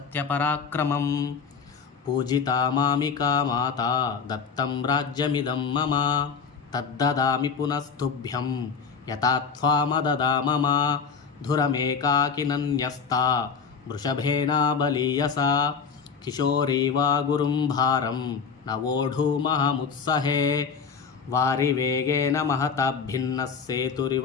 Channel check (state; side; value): quieter; right; 5.9 dB